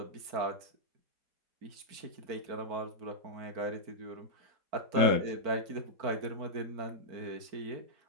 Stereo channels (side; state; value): left; late; 4.5 ms